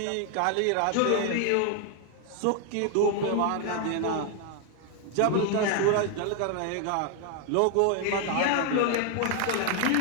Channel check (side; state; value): both; different; correlation 0.00